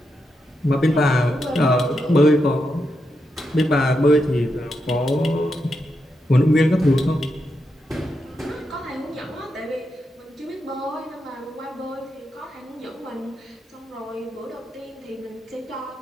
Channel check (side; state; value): both; normal; correlation 0.85